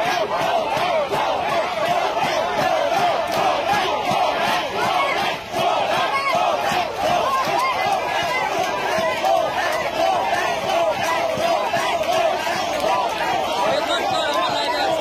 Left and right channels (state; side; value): identical; both; correlation 1.00